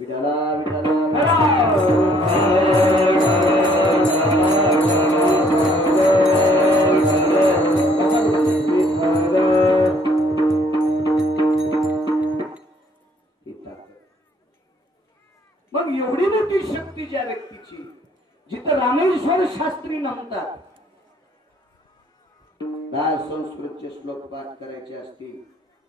विठाला मग एवढी मोठी शक्ती ज्या व्यक्तीची, जिथं रामेश्वर शास्त्री म्हणतात, संस्कृतचे श्लोक पाठ करायचे असतील,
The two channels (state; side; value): normal; both; correlation 0.63